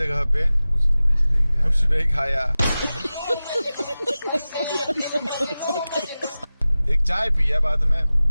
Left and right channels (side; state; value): both; inverted; correlation -0.96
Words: पे कुछ नहीं खाया। एक चाय पिया बाद में,